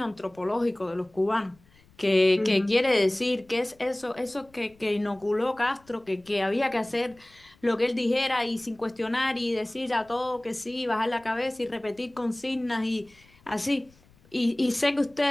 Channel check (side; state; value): left; noise; rumble, 29 dB below the sound